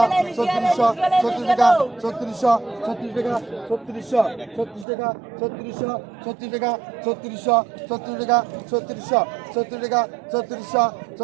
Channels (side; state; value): left; drops out; at 4.9 s